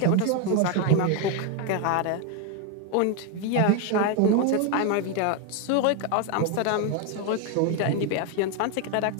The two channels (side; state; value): both; different; correlation 0.01